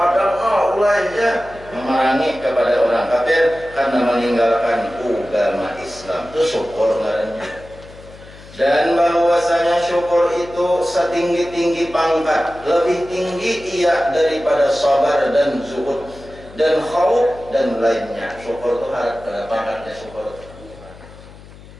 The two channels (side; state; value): left; noise; hum, 20 dB below the sound